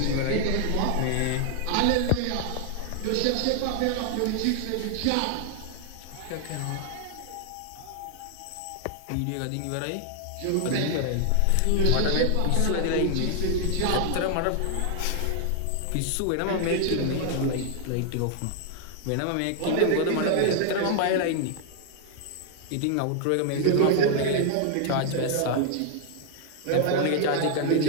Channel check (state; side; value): different; both; correlation 0.00